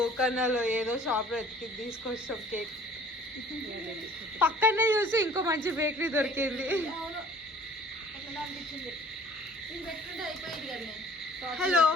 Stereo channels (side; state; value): both; normal; correlation 0.52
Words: ఏదో షాప్ లో ఎత్తికి తీసుకొచ్చాం కేక్. పక్కనే చూసి ఇంకో మంచి బేకరీ దొరికింది. Hello